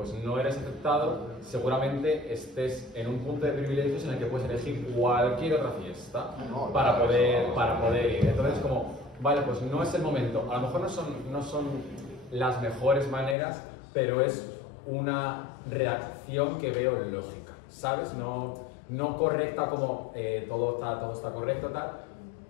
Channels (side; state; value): right; drops out; at 13.4 s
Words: no eres aceptado, seguramente estés en un punto de privilegios en el que puedes elegir cualquier otra fiesta para poder ir. Entonces, como, vale, pues no es el momento. A lo mejor no son las mejores maneras, pero es una reacción que veo lógica. ¿sabes? No correcta como todo está correcto, tal,